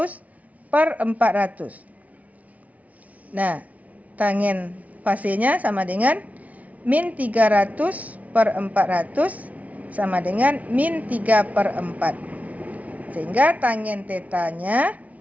per 400. Nah, tangen fasenya sama dengan min 300 per 400 sama dengan min 3 per 4. Sehingga tangen tetanya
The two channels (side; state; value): left; late; 0.070 ms